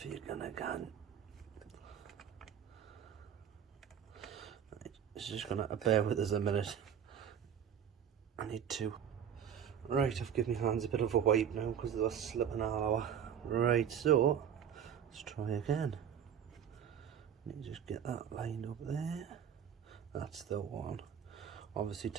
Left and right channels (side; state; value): left; quieter; 8.6 dB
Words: you're gonna go. It's just gonna bear with us a minute. I need to. Right, I've given my hands a bit of a wipe now because they were slipping all over. Right, so let's try again. Let me just get that lined up there. That's the one. Obviously